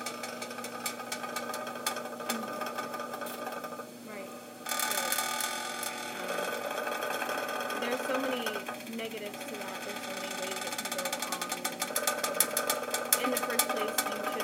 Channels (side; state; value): both; identical; correlation 1.00